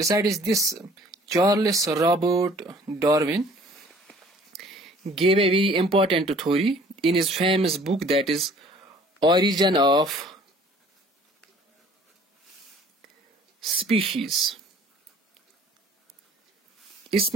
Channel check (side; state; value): both; normal; correlation 0.53